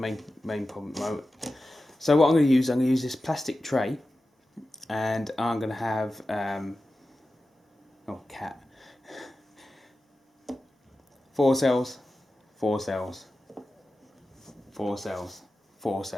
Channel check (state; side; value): normal; both; correlation 0.93